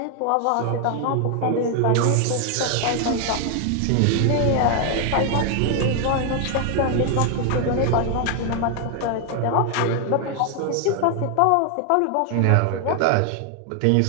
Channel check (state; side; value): different; both; correlation 0.00